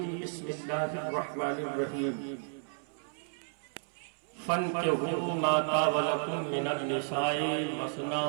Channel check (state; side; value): silent; left; 56 dB below the other